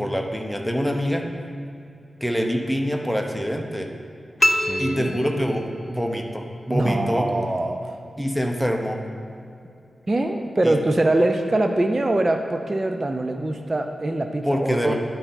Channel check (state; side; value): normal; both; correlation 0.96